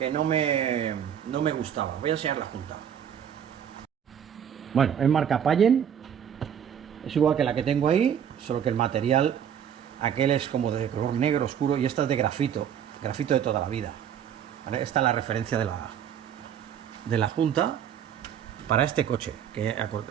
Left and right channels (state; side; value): quieter; left; 8.9 dB